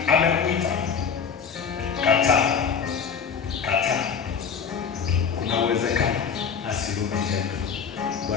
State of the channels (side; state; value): right; quieter; 6.6 dB